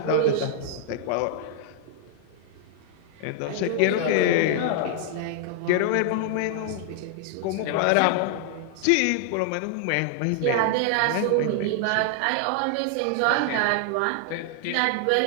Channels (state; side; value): different; both; correlation 0.00